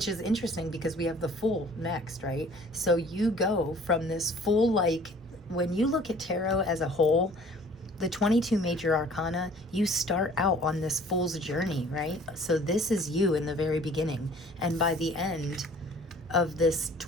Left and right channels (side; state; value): both; normal; correlation 0.52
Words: is interesting because we have the Fool next, right? So you go from this Fool, like when you look at tarot as a whole, the 22 major arcana, you start out on this Fool's journey, right? So this is you in the very beginning. And by the end of this